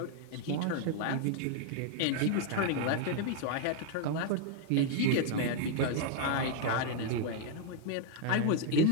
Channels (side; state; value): both; different; correlation 0.00